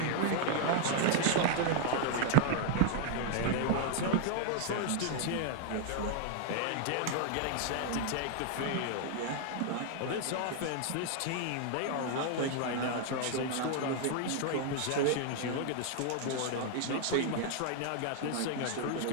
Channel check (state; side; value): different; both; correlation 0.00